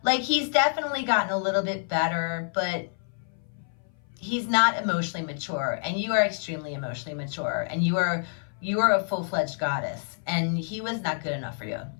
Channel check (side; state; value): right; silent; 57 dB below the other